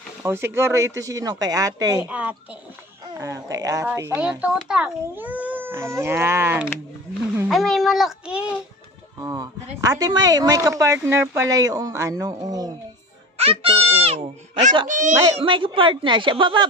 Oh, siguro ito sino? Kay ate. Ate. Ah, kay ate. Sa'yo, Yan. tutak. Ayan. Ay, may malaki. Oh. Ate, may kapartner pala yung ano, oh. Ito, oh. May kapartner siya. Baba.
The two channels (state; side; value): normal; both; correlation 0.34